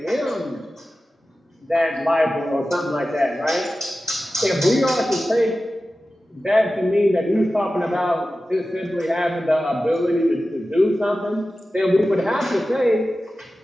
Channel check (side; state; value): both; normal; correlation 0.94